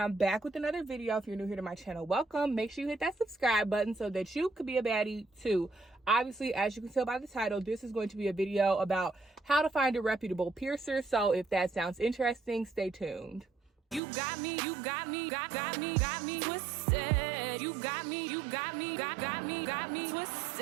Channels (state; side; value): drops out; left; at 14.0 s